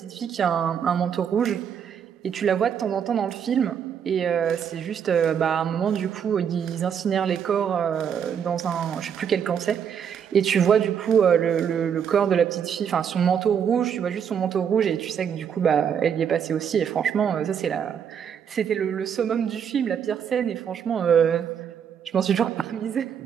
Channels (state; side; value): quieter; left; 7.9 dB